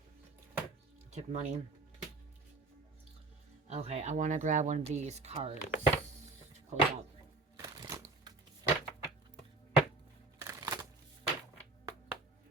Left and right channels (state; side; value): quieter; left; 3.3 dB